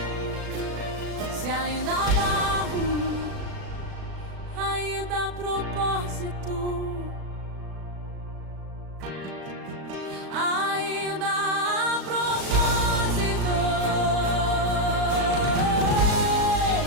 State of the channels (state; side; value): late; left; 37 ms